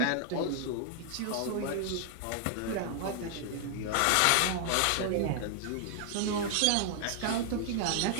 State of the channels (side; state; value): both; different; correlation 0.00